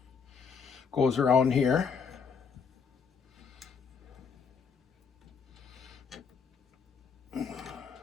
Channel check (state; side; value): quieter; right; 6.0 dB